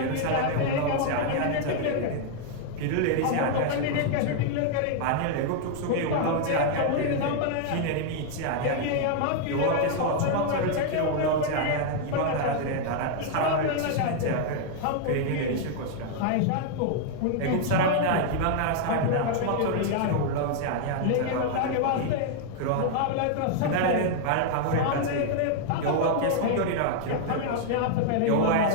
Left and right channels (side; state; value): both; different; correlation 0.00